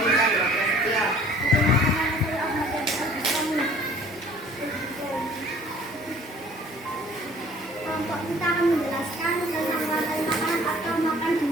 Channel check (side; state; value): both; normal; correlation 0.52